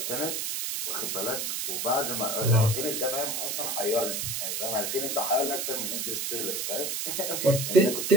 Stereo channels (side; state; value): right; noise; hiss, 1 dB below the sound